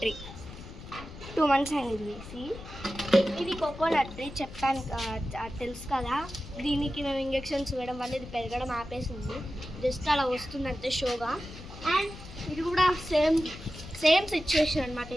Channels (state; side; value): noise; left; rumble, 14 dB below the sound